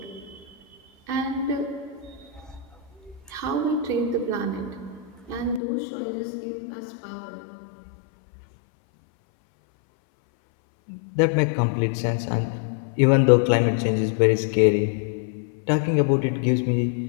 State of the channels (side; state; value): right; drops out; at 5.6 s